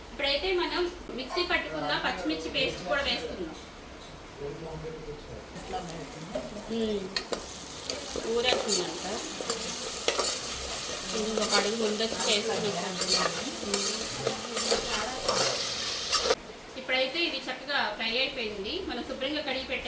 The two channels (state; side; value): identical; both; correlation 1.00